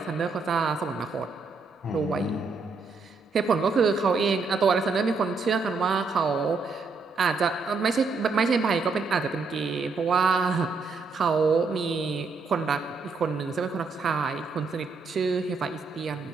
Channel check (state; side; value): quieter; left; 4.3 dB